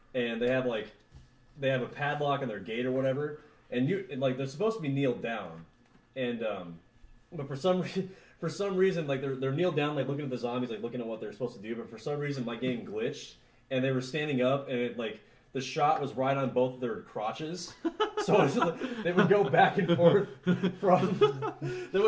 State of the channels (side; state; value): both; identical; correlation 1.00